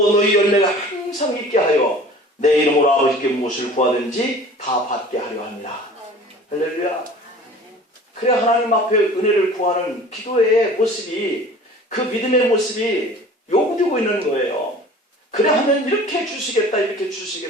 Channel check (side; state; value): both; normal; correlation 0.44